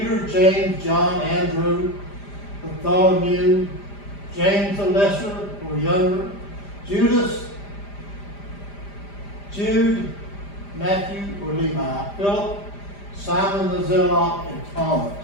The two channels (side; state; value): right; late; 5.0 ms